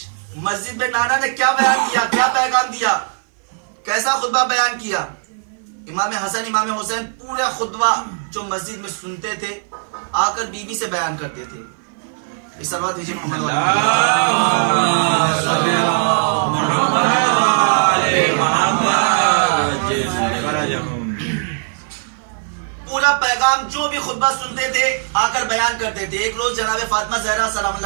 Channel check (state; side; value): silent; left; 57 dB below the other